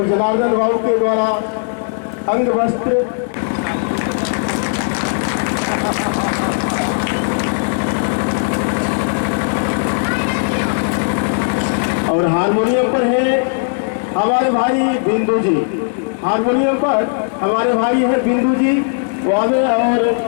जनार्दन बाबू के द्वारा अंग वस्त्र और हारमोनियम पर है हमारे भाई बिंदु जी। हारमोनियम पर हमारे भाई हैं बिंदु जी, वो आगे और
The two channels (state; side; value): silent; right; digital silence